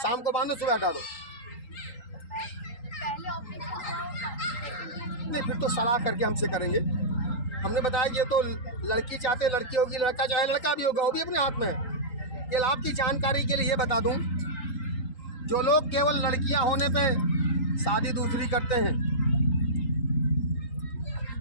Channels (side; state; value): right; late; 3.8 ms